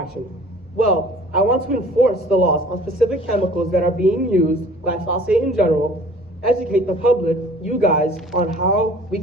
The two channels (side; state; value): both; normal; correlation 0.49